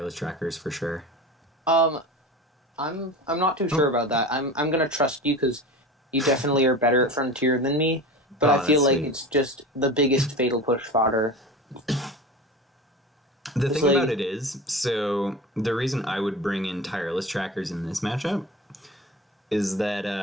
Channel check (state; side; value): normal; both; correlation 0.32